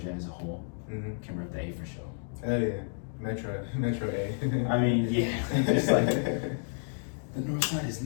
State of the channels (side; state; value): right; silent; digital silence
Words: as a whole, can rep the A for sure. Oh yeah, Metro A. I mean, yeah, it's like the north side is